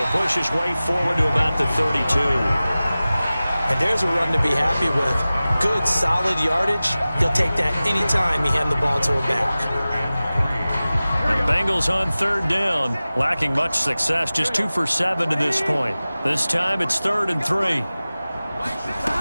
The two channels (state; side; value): inverted; both; correlation -0.97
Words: push his way forward to about the 32. And there's a run to be happy with. Good, solid yardage. He'll take that anytime you hand the ball to a back. Bengals on third down, lacking much success, just 2 for 7 to this point. This time it's 3rd and 3.